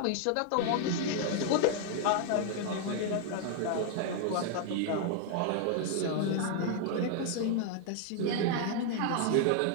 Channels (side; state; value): both; different; correlation 0.00